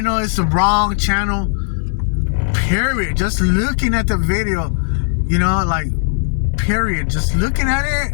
it's the wrong channel, period. Just looking at the video, period. Just looking at it,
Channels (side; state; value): right; silent; digital silence